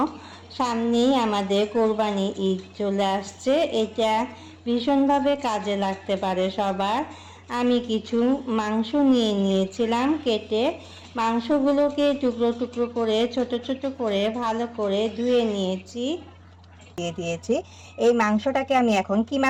সামনেই আমাদের কোরবানি ঈদ চলে আসছে। এটা ভীষণভাবে কাজে লাগতে পারে সবার। আমি কিছু মাংস নিয়ে নিয়েছিলাম কেটে। মাংসগুলোকে টুকরো টুকরো করে ছোট ছোট করে ভালো করে ধুয়ে নিয়েছি। দিয়ে দিয়েছি। এই মাংসটাকে আমি এখন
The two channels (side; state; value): both; identical; correlation 1.00